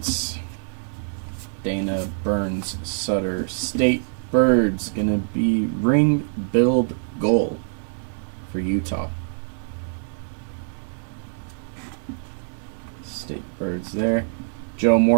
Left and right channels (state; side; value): silent; left; digital silence